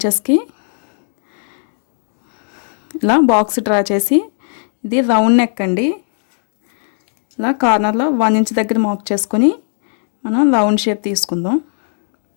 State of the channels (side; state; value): right; silent; 68 dB below the other